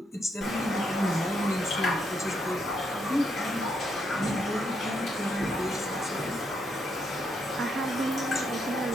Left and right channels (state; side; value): normal; both; correlation 0.77